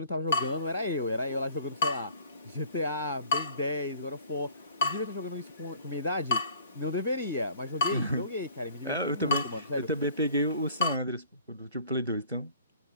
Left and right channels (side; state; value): both; inverted; correlation -0.52